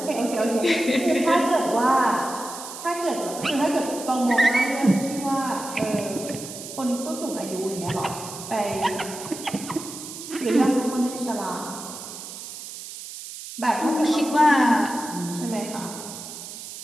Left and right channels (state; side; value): noise; right; hiss, 11 dB below the sound